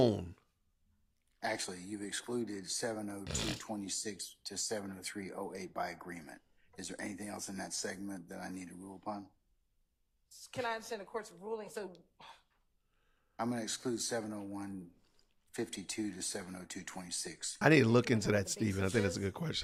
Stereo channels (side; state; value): both; identical; correlation 1.00